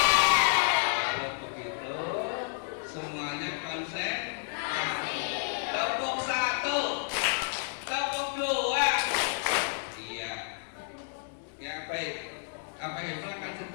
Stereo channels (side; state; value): right; silent; 57 dB below the other